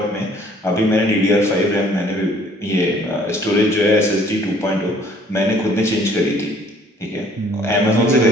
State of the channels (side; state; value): both; normal; correlation 0.58